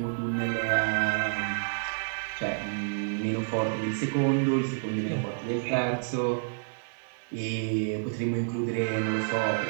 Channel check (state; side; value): silent; left; digital silence